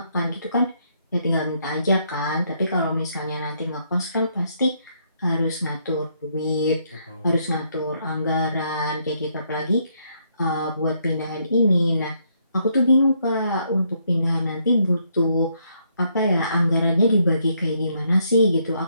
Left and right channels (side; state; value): both; inverted; correlation -0.73